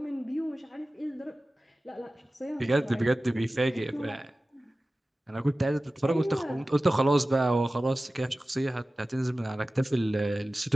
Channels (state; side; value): normal; both; correlation 0.96